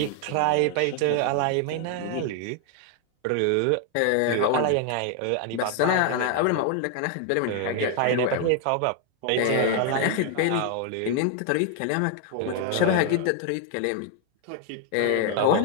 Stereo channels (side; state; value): both; different; correlation 0.00